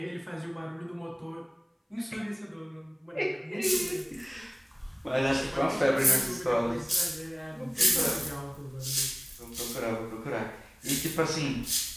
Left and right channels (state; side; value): identical; both; correlation 1.00